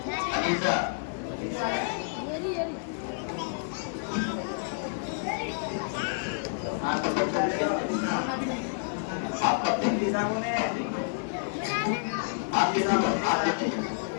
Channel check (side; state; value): right; silent; digital silence